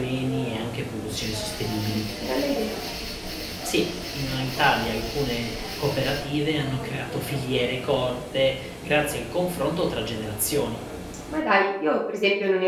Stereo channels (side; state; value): both; identical; correlation 1.00